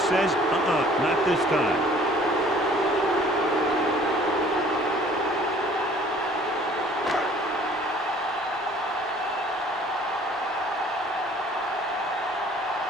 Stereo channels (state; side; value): normal; both; correlation 0.54